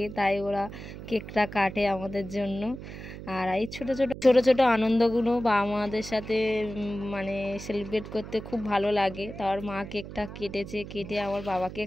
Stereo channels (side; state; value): right; noise; hum, 11 dB below the sound